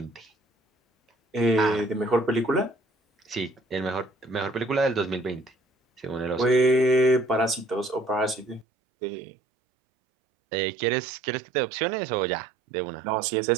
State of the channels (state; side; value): drops out; left; at 8.7 s